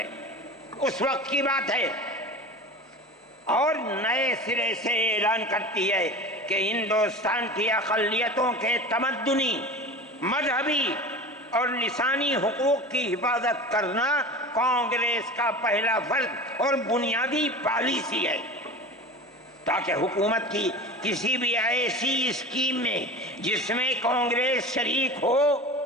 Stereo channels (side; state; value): both; normal; correlation 0.33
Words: اس وقت کی بات ہے، اور نئے سرے سے اعلان کرتی ہے کہ ہندوستان کی اقلیتوں کے تمدنی، مذہبی اور لسانی حقوق کی حفاظت کرنا کانگریس کا پہلا فرض اور بنیادی پالیسی ہے، تاکہ حکومت کی کسی بھی ایسی اسکیم میں جس میں کانگریس شریک ہو،